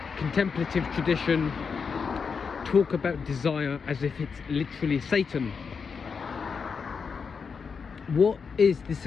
contemplative tradition, talk about desire as if it's literally Satan? What is the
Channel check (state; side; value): quieter; right; 5.7 dB